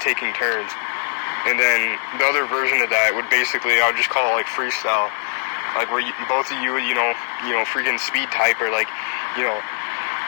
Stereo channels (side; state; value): right; silent; digital silence